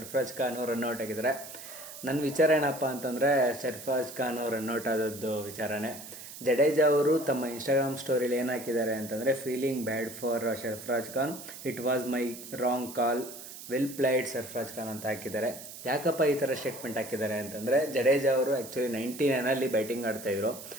ಖಾನ್ ರನ್ಔಟ್ ಆಗಿದ್ದಾರೆ. ನನ್ನ ವಿಚಾರ ಏನಪ್ಪ ಅಂತಂದರೆ, ಸರ್ಫರಾಜ್ ಖಾನ್ ರನ್ಔಟ್ ಆದದ್ದು ವಿಚಾರನೇ. ಜಡೇಜಾ ಅವರು ತಮ್ಮ ಇನ್ಸ್ಟಾಗ್ರಾಮ್ ಸ್ಟೋರಿಲಿ ಏನು ಹಾಕಿದ್ದಾರೆ ಅಂತಂದರೆ, feeling bad for Sarfaraz Khan, it was my wrong call, well played Sarfaraz Khan ಅಂತ ಹಾಕಿದ್ದಾರೆ. ಯಾಕಪ್ಪ ಈ ಥರ ಸ್ಟೇಟ್ಮೆಂಟ್ ಹಾಕಿದ್ದಾರೆ ಅಂತಂದರೆ, ಜಡೇಜಾ ಅವರು ಆ್ಯಕ್ಚುಲಿ 99 ಬ್ಯಾಟಿಂಗ್ ಆಡ್ತಾಯಿದ್ರು.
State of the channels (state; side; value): noise; right; hiss, 13 dB below the sound